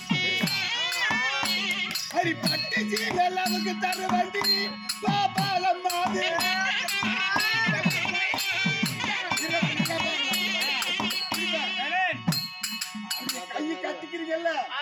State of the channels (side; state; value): both; identical; correlation 1.00